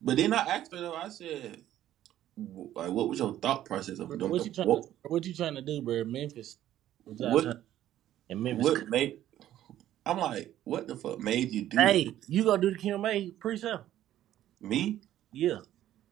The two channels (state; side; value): quieter; left; 12.6 dB